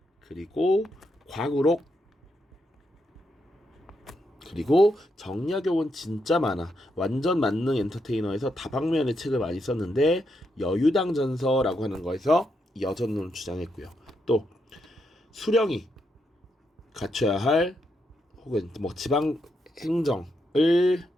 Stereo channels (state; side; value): normal; both; correlation 0.81